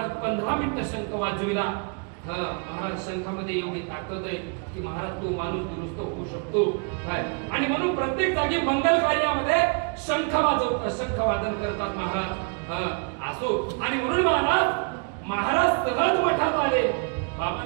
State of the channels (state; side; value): quieter; left; 36.2 dB